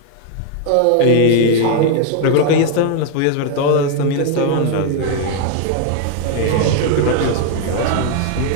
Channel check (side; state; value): both; different; correlation 0.00